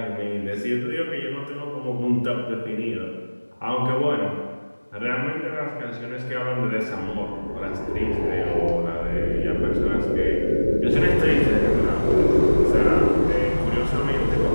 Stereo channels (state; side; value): inverted; both; correlation -1.00